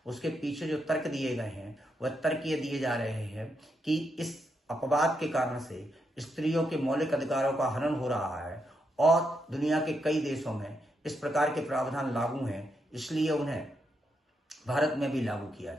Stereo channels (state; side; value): normal; both; correlation 0.81